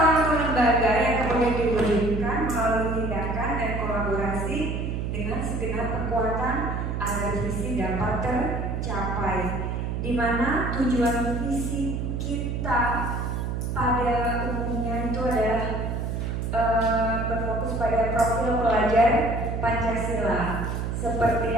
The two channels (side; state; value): right; noise; hum, 2 dB below the sound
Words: atau lembaga yang kemudian diwujudkan melalui tindakan dan kolaborasi dengan segenap kekuatan agar visi dapat tercapai. Di mana tujuan visi kita pada umumnya itu adalah berfokus pada profil pelajar Pancasila. Seperti